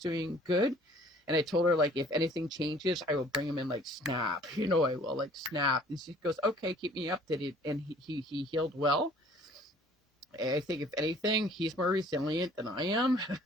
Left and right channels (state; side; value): normal; both; correlation 0.54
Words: good. And I told her like if anything changes, I will bring him in like Snap. I will like Snap. And she goes, okay, keep me updated. And he healed well. I think if anything, he's more resilient than I am.